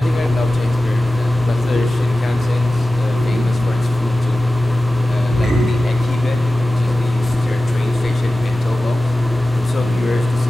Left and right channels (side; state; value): both; normal; correlation 0.95